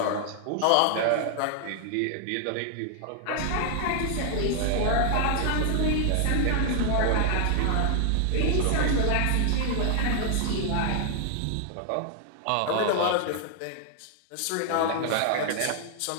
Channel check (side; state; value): both; different; correlation 0.00